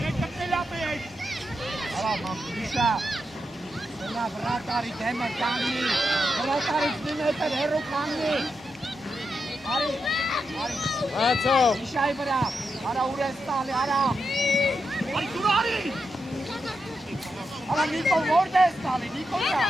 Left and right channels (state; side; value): normal; both; correlation 0.86